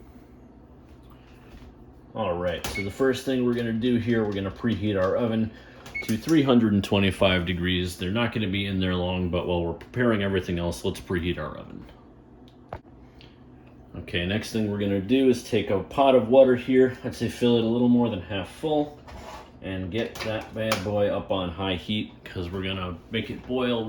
Alright, so the first thing we're going to do here, we're going to preheat our oven to 325 degrees. They're not going to be in there long, but while we're preparing everything else, let's preheat our oven. Okay, next thing we're going to do is take a pot of water here. I'd say fill it a little more than half full and get that bad boy up on high heat because we're going to make it boil.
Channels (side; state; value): both; identical; correlation 1.00